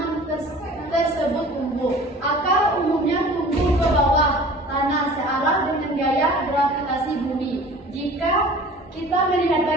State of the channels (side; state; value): both; normal; correlation 0.44